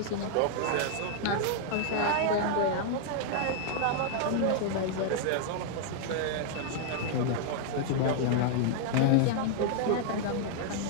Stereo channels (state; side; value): different; both; correlation -0.01